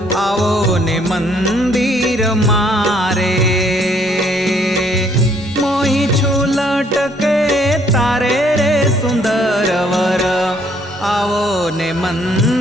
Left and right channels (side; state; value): both; normal; correlation 0.65